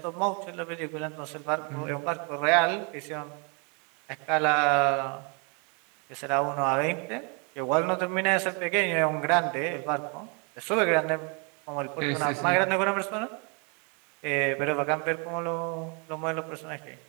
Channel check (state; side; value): quieter; left; 34.6 dB